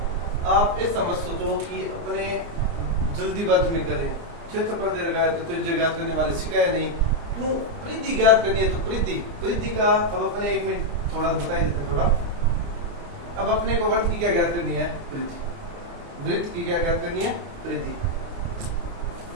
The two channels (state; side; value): late; left; 29 ms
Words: आप ऐसा मत सोचो कि अपने जल्दीबाजी में करें, क्षेत्रफल दे रखा है तो त्रिज्या ज्ञात करने वाले सिखाए नहीं, क्यों परिधि ज्ञात करनी है। तो परिधि का अब अपने एक मिनट थोड़ा बताई देते थोड़ा। अब अपने को वृत्त की क्या ज्ञात करनी है, परिधि। वृत्त की क्या ज्ञात करनी है, परिधि।